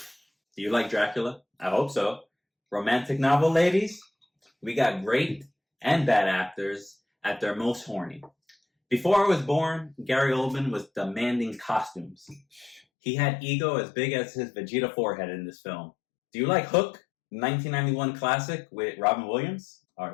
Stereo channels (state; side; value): drops out; right; at 12.8 s